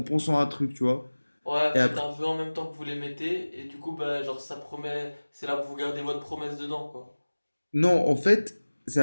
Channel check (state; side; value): inverted; both; correlation -1.00